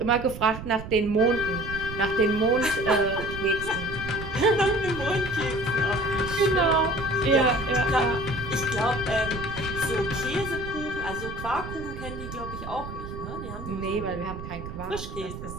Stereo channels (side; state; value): right; noise; rumble, 9 dB below the sound